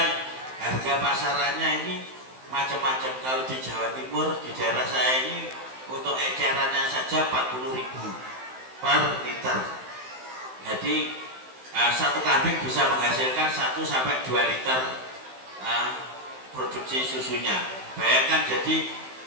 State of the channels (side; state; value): left; late; 15 ms